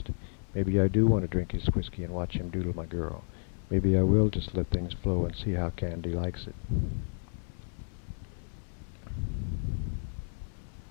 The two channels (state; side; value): silent; right; 57 dB below the other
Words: Maybe I do want to drink his whiskey and watch him doodle my girl. Maybe I will just let things flow and see how Candy likes it.